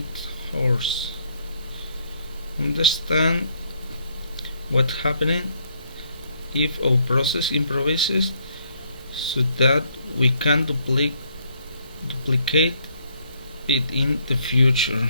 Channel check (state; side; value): inverted; both; correlation -0.69